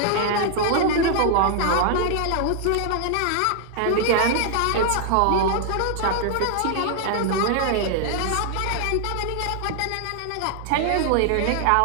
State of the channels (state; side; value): different; both; correlation 0.00